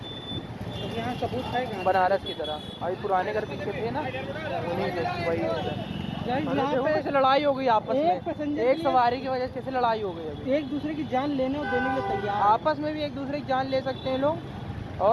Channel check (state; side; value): identical; both; correlation 1.00